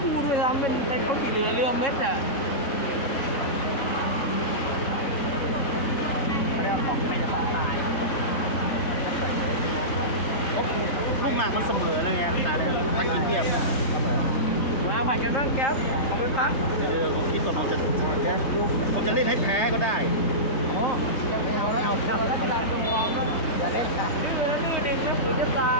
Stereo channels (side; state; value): right; late; 3.2 ms